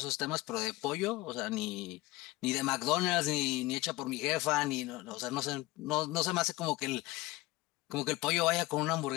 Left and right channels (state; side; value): quieter; right; 19.2 dB